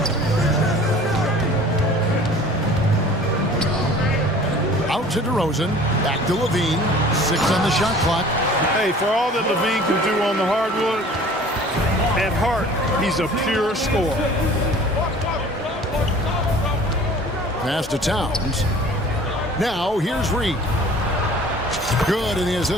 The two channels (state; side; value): normal; both; correlation 0.47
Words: Out to DeRozan. Back to Levine. 6 on the shot clock. Hey, for all that Levine can do on the hardwood, at heart, he's a pure scorer. Pass to Towns. Now, here's Reed. Good, and the